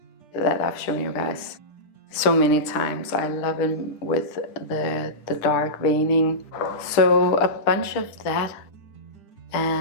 that I've shown you guys so many times. I love them with the dark veining. So a bunch of that.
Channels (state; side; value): late; right; 10 ms